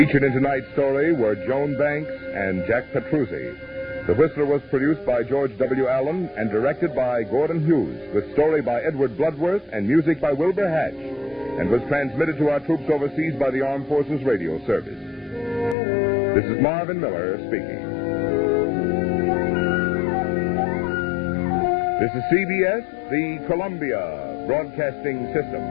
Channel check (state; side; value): drops out; right; at 15.8 s